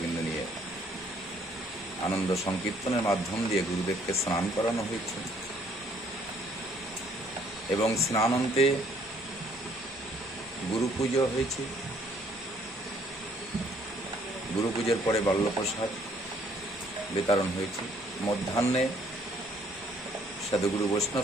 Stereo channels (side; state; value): both; normal; correlation 0.63